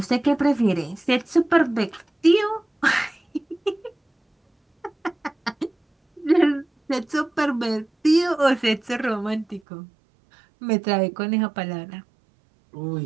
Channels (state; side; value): drops out; left; at 9.6 s